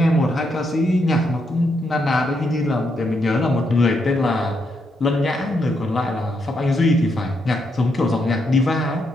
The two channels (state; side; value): normal; both; correlation 0.79